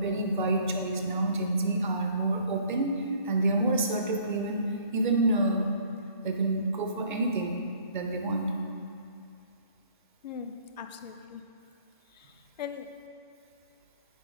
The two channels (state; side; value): inverted; both; correlation -0.57